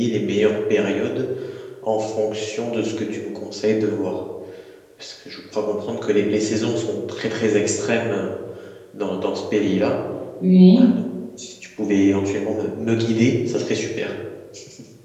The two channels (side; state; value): both; identical; correlation 1.00